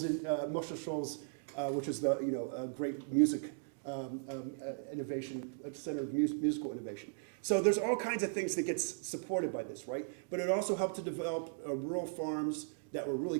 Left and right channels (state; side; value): silent; left; digital silence